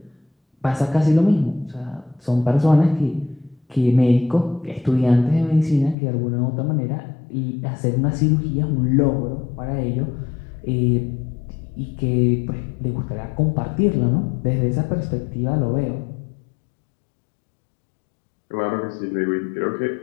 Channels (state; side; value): drops out; right; at 6.0 s